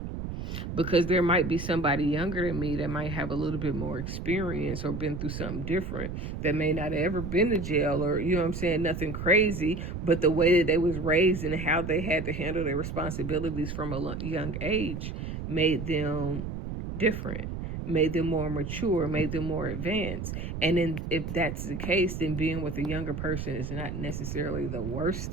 because there might be somebody younger than me that might have a little bit more experience or been through something different, that may not have ever been to jail or, nothing crazy, but the way that they was raised and how they had to handle their responsibilities from a young age made them different, made them more mature, made them more advanced. And then if that's the case, then being with a younger person is not necessarily the worst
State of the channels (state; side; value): noise; right; rumble, 6 dB below the sound